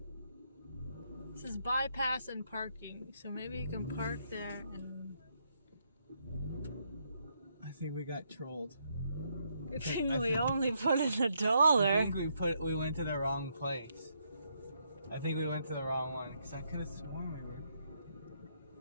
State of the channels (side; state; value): both; inverted; correlation -0.76